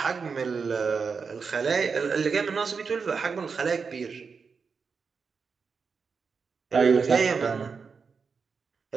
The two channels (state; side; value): quieter; left; 5.4 dB